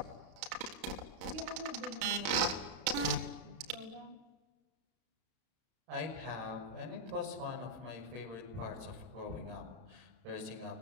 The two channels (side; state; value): left; late; 32 ms